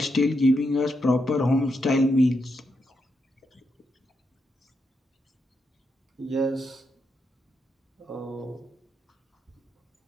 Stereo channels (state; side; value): normal; both; correlation 0.83